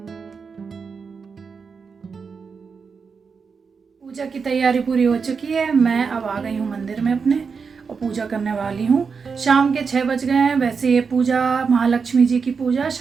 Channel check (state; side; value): quieter; left; 5.5 dB